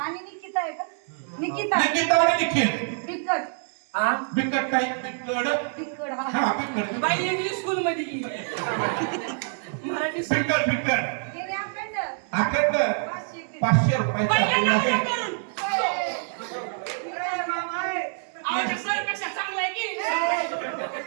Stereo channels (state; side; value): silent; left; 61 dB below the other